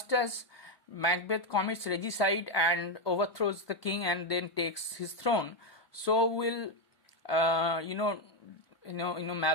as Macbeth commits regicide and overthrows the king and then takes his throne, so will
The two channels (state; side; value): late; right; 1.2 ms